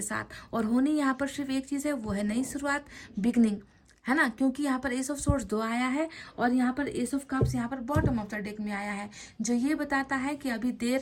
साथ। और होनी यहाँ पर सिर्फ एक चीज़ है, वो है नई शुरुआत, बिगनिंग, है ना, क्योंकि यहाँ पर एस ऑफ सोर्ड्स 2 आया है और यहाँ पर एस ऑफ कप्स यहाँ पर बॉटम ऑफ द डेक में आया है, जो ये बताता है कि अभी देर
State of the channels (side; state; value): both; identical; correlation 1.00